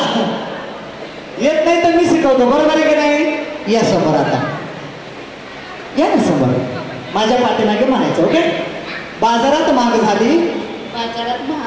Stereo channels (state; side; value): identical; both; correlation 1.00